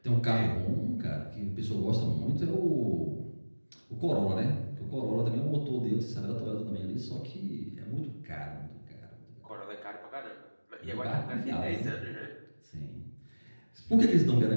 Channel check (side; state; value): both; inverted; correlation -1.00